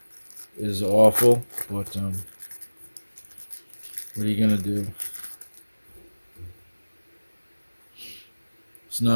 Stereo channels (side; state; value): both; inverted; correlation -1.00